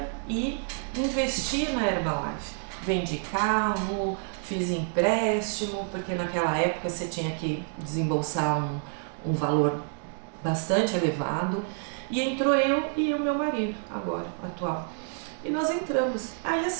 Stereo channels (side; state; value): left; silent; 59 dB below the other